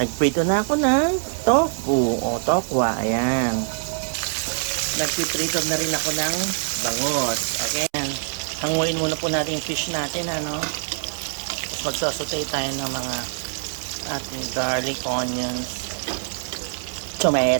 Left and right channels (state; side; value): silent; left; 63 dB below the other